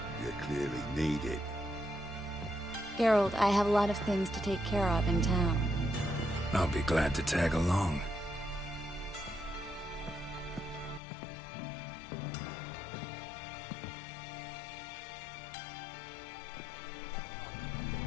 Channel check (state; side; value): drops out; right; at 11.0 s